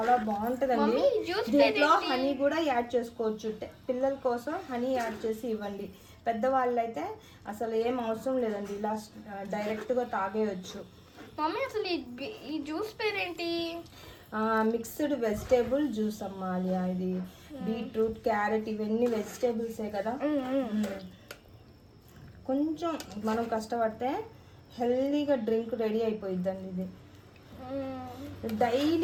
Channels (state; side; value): identical; both; correlation 1.00